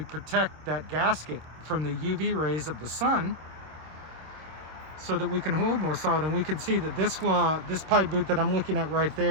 protect that gasket from the UV rays of the sun, so that we can hold more solid. And we can see that this pipe boot that I'm looking at right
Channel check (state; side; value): late; left; 26 ms